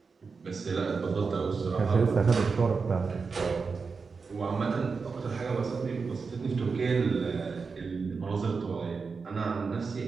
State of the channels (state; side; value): quieter; left; 4.9 dB